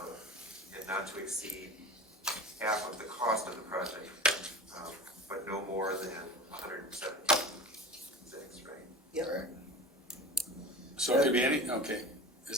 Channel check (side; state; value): both; normal; correlation 0.33